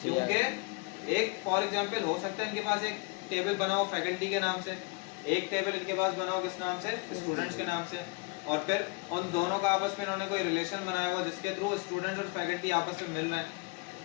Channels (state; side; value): quieter; right; 28.7 dB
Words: क्योंकि एक फॉर एग्जांपल हो सकता है इनके पास एक टेबल बना हो फैकल्टी के नाम से, एक टेबल इनके पास बना हो किस नाम से? स्टूडेंट्स के नाम से, और फिर उन दोनों का आपस में इन्होंने कोई रिलेशन बनाया हुआ जिसके थ्रू स्टूडेंट्स और फैकल्टी आपस में मिल रहे हैं।